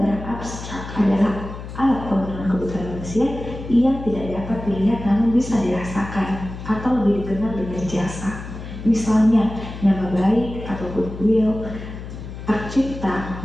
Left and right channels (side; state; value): left; noise; hum, 10 dB below the sound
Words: abstrak adalah alat pemenuhan kebutuhan manusia yang tidak dapat dilihat namun bisa dirasakan atau lebih dikenal dengan jasa. Misalnya nama baik atau goodwill, hak cipta,